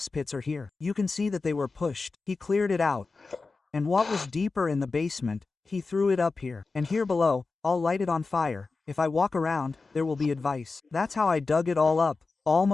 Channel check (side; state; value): right; quieter; 4.0 dB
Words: pits are here. You can see that they were pushed. He cleared it out. And what was deeper in the basement, he threw it up here. And here below, I'll light it on fire. If I walk around, there will be advice. That's how I dug it all up,